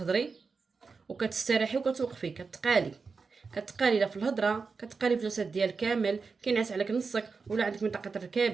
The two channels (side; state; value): left; quieter; 4.8 dB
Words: وكتستريحي وكتوقفي، كتقالي لا في الهضره، كتقالي في الجسد ديالك كامل، كينعس عليك نصك، ولا عندك منطقه